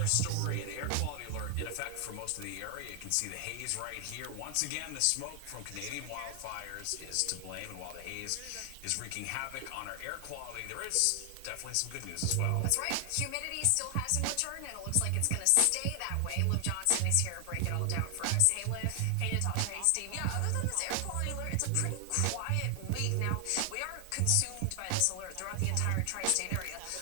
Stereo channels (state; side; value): different; both; correlation 0.00